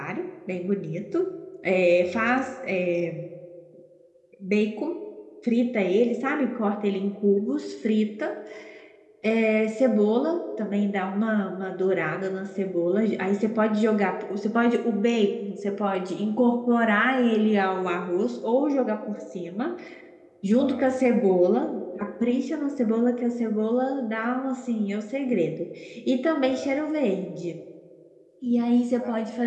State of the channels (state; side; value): identical; both; correlation 1.00